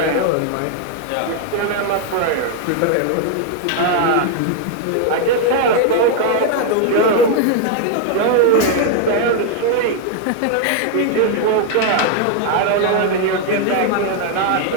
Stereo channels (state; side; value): different; both; correlation 0.00